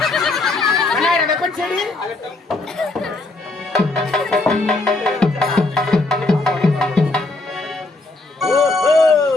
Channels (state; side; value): quieter; right; 3.1 dB